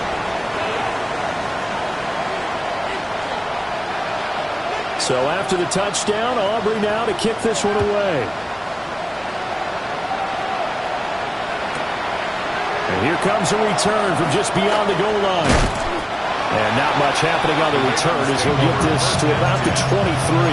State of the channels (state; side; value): identical; both; correlation 1.00